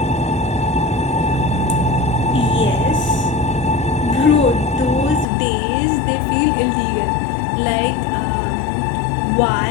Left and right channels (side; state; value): right; drops out; at 5.2 s